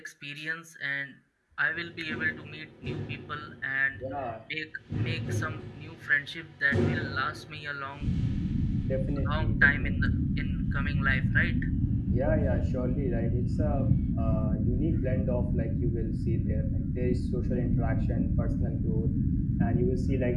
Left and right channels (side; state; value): both; identical; correlation 1.00